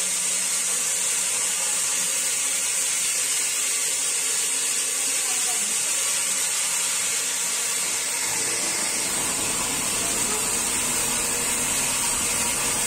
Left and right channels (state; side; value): identical; both; correlation 1.00